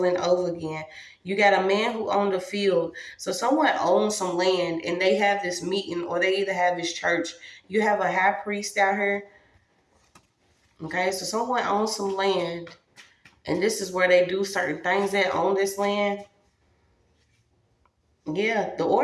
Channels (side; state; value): both; identical; correlation 1.00